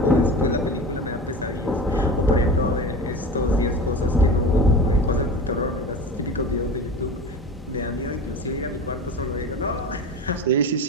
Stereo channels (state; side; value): normal; both; correlation 0.31